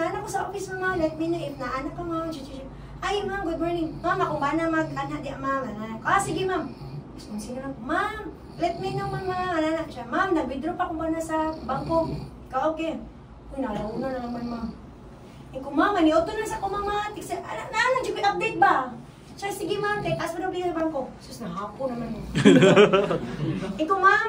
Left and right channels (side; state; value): both; identical; correlation 1.00